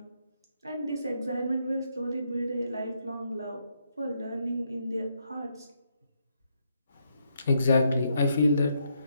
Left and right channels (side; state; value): both; inverted; correlation -0.77